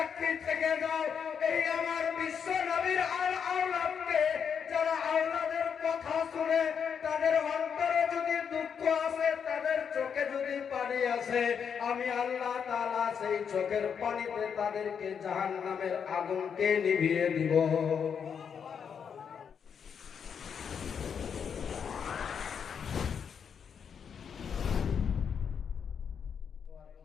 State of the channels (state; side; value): quieter; right; 7.1 dB